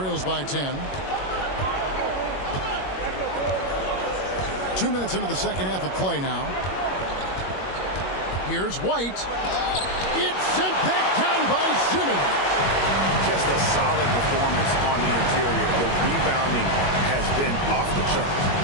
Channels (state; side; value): late; right; 21 ms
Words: by 10. 2 minutes into the second half of play now. Here's White. It's sent back down by Simmons. Just a solid performance on the interior. The rebounding has been off the charts.